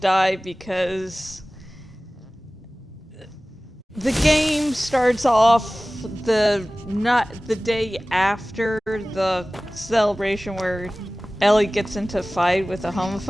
because the game starts off not the day after the celebration where Ellie gets into a fight with a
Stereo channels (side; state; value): both; normal; correlation 0.98